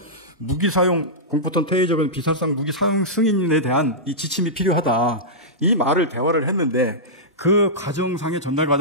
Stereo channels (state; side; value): normal; both; correlation -0.13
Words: 무기 사용 공포탄 테이저건 비살상 무기 사용 승인에 대한 이 지침이 필요하다. 이 말을 대화를 했는데 그 과정상의 전달